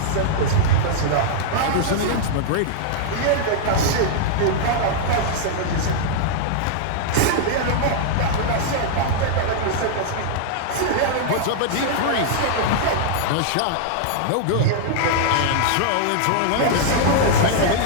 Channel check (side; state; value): both; different; correlation -0.01